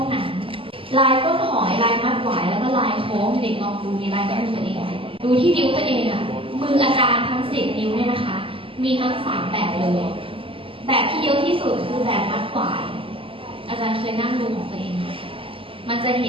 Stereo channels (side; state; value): left; late; 0.26 ms